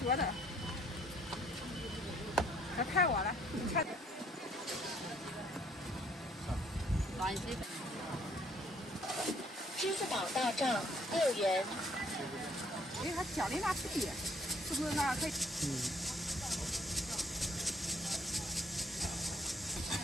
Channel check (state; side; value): normal; both; correlation 0.64